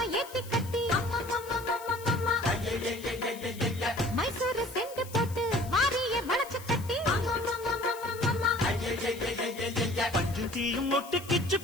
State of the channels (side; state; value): left; noise; hiss, 17 dB below the sound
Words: ஏத்தி கட்டி மைசூரு செண்டு போட்டு மாறிய வளச்சு கட்டி பஞ்சும் தீயும் ஒட்டு கிச்சு